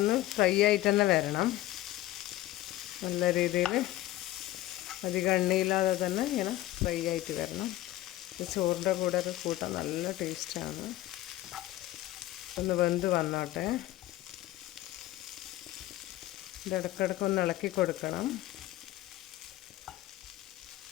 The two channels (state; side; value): quieter; right; 15.5 dB